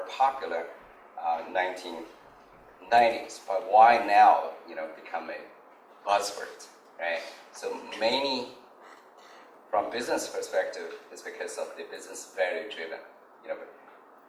popular 1990s. But why now, become a buzzword, right? So many, from business perspective, is because of the business value driven.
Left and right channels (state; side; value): identical; both; correlation 1.00